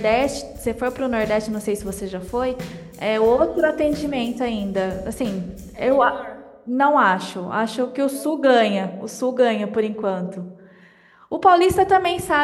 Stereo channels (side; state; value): both; identical; correlation 1.00